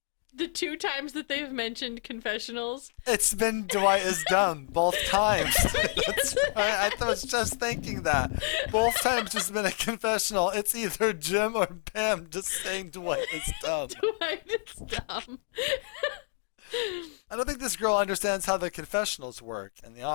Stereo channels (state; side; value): silent; right; digital silence